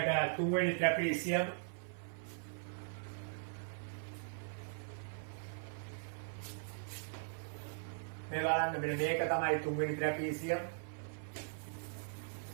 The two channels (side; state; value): left; silent; 51 dB below the other